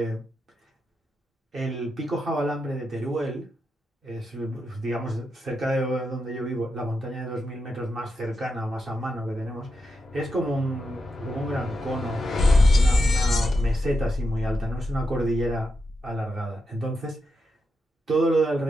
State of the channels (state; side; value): normal; both; correlation 0.86